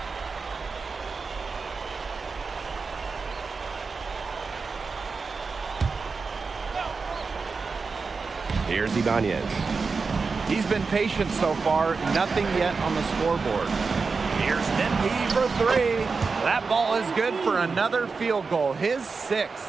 Here's Ibanez. He's been patient so far. Nothing yet on the scoreboard. Here's MP for three. That ball is good for another field goal. His sixth.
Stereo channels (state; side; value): quieter; left; 4.6 dB